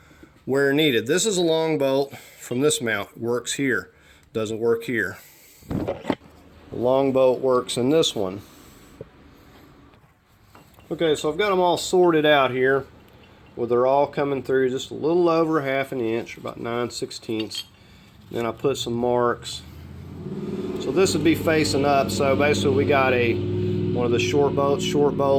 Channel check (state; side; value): identical; both; correlation 1.00